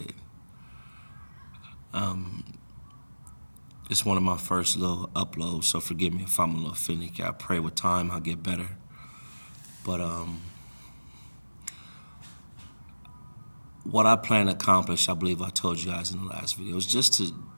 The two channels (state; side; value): inverted; both; correlation -1.00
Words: It's one of my first little uploads, so forgive me if I'm a little finicky. I pray with time I'll get better. But what I plan to accomplish, I believe I told you guys in the last video, is just